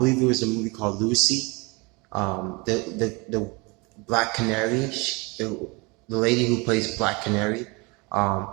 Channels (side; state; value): left; quieter; 27.6 dB